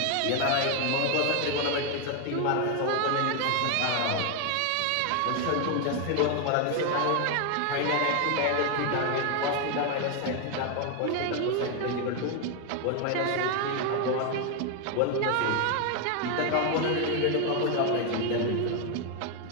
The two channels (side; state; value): both; different; correlation 0.01